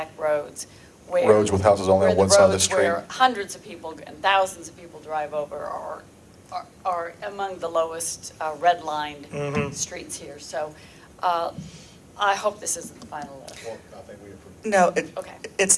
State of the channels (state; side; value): identical; both; correlation 1.00